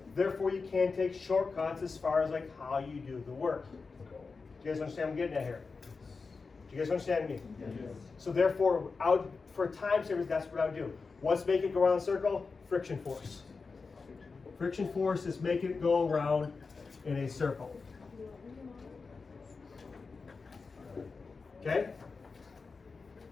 Therefore, you can take shortcuts as far as like how you do the work. Do you guys understand what I'm getting at here? Do you guys understand me? Yes. So therefore, for time savers, that's what I would do. What's making it go around the circle? Friction force. Friction force is making it go around in a circle. Okay?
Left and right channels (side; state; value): right; quieter; 4.5 dB